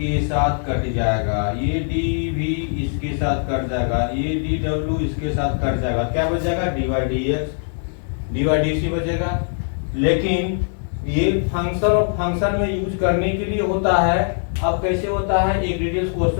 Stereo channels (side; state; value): right; silent; digital silence